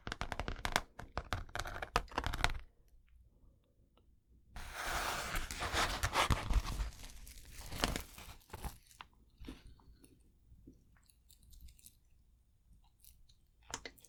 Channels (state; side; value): identical; both; correlation 1.00